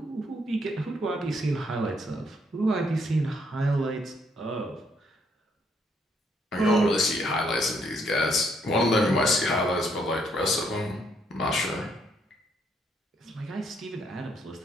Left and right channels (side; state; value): both; normal; correlation 0.71